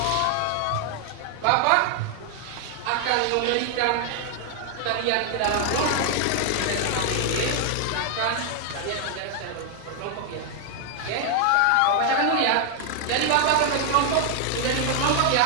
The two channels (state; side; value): different; both; correlation 0.00